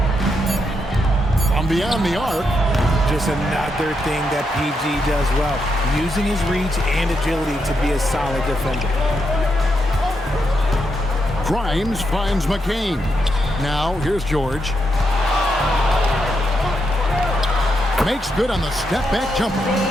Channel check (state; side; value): normal; both; correlation 0.82